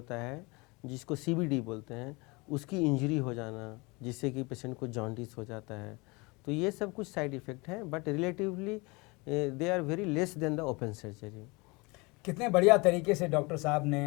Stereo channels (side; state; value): right; quieter; 26.5 dB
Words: है जिसको CBD बोलते हैं, उसकी इंजरी हो जाना, जिससे कि पेशेंट को जॉन्डिस हो जाता है। तो ये सब कुछ साइड इफ़ेक्ट हैं, but relatively they are very less than the open surgery. कितने बढ़िया तरीके से डॉक्टर साहब